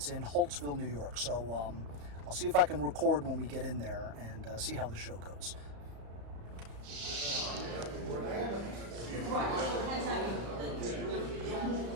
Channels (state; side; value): late; left; 35 ms